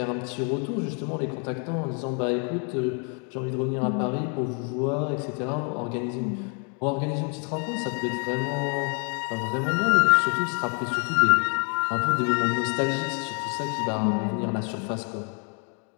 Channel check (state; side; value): quieter; right; 39.3 dB